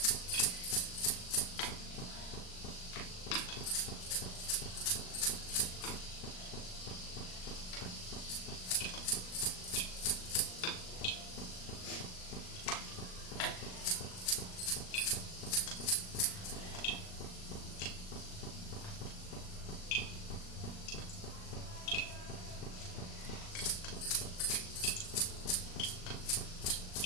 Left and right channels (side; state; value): right; late; 38 ms